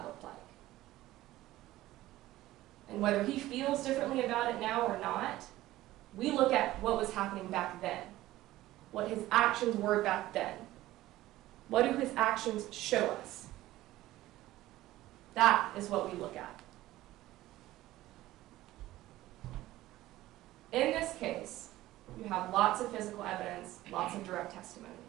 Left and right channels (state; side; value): quieter; left; 16.0 dB